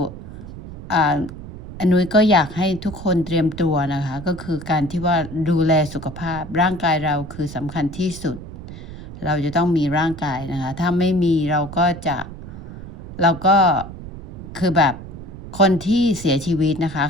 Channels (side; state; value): right; noise; rumble, 12 dB below the sound